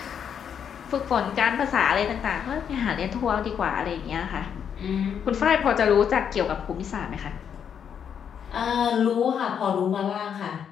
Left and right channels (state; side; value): quieter; right; 8.0 dB